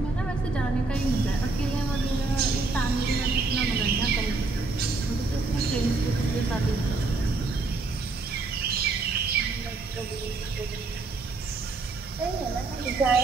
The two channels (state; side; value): quieter; left; 3.7 dB